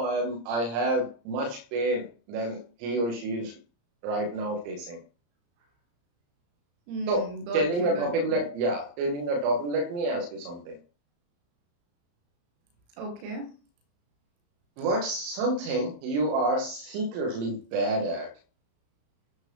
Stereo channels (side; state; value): left; late; 34 ms